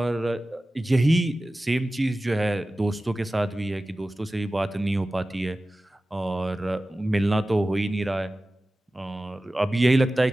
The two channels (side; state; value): both; normal; correlation 0.96